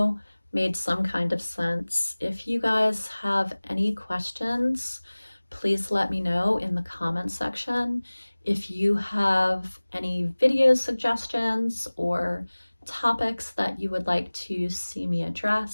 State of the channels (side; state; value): both; inverted; correlation -1.00